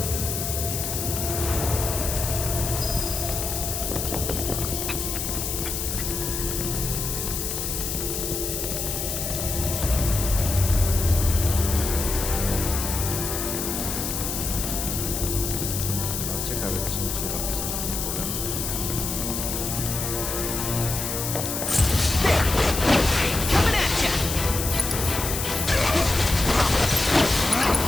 ciekawie też mi się robi z tym potworem. Coming at ya!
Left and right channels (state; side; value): noise; left; hiss, 3 dB below the sound